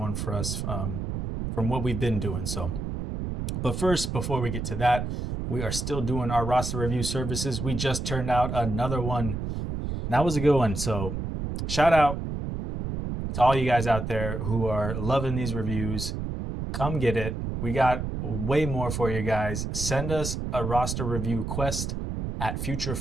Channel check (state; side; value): noise; right; rumble, 4 dB below the sound